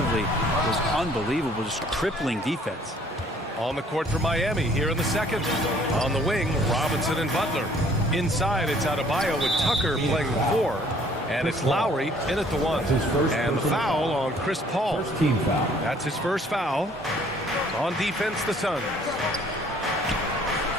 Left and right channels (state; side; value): normal; both; correlation 0.58